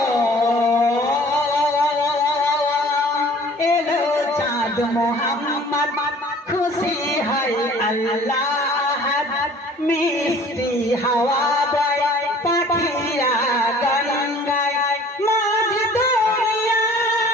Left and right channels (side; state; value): both; normal; correlation 0.50